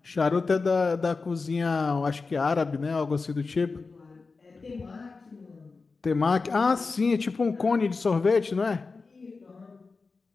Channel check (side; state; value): right; quieter; 4.2 dB